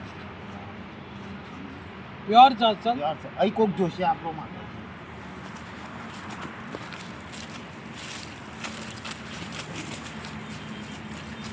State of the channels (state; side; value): identical; both; correlation 1.00